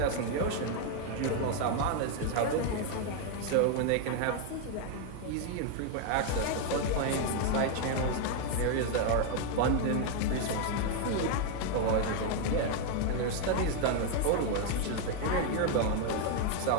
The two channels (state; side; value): different; both; correlation 0.01